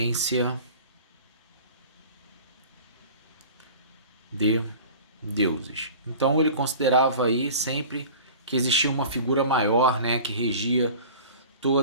de deuses. Então ele considerava aí sempre que existia uma figura maior, né, que regia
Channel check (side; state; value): both; inverted; correlation -0.40